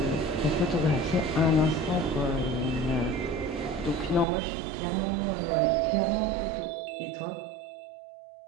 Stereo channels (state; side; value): drops out; left; at 4.2 s